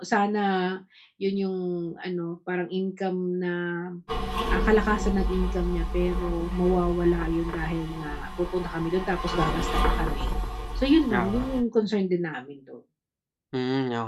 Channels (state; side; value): identical; both; correlation 1.00